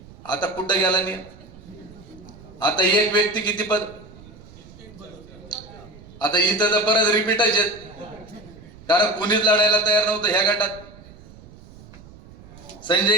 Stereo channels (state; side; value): noise; right; rumble, 21 dB below the sound